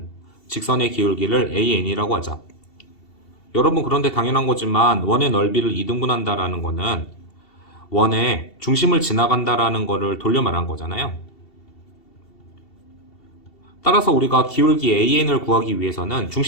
직선의 기울기를 an이라고 하자. 여러분 그런데 당연한 거지만 원의 넓이를 2등분한다라는 거는 원의 중심을 지나간다라는 거를 돌려 말한 거잖아요. 따라서 우리가 기울기 an을 구하기 위해서는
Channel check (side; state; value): right; late; 2.7 ms